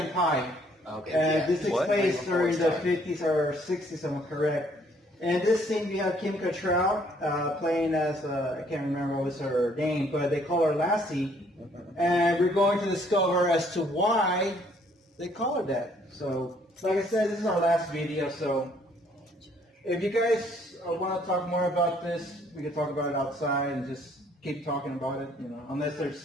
Pie. Okay. And this takes What? place during the 50s or 60s, if I'm correct. And this scene we have Kim Cattrall playing as, I can't remember what was her name, but they call her Lassie. And we're going to discover as to why they call her that. So, like I said, this is our last video, so if you guys want to talk more about this, we can talk about it outside and just keep talking about it, you know, unless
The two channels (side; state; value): both; normal; correlation 0.64